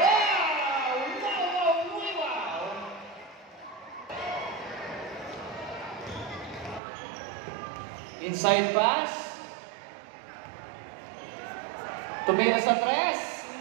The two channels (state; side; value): drops out; left; at 6.8 s